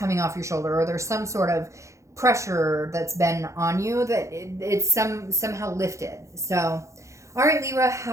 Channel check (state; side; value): late; left; 0.15 ms